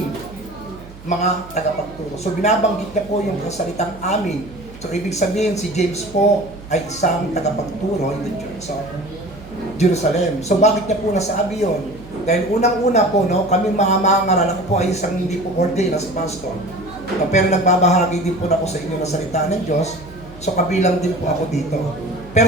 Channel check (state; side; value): noise; right; hum, 18 dB below the sound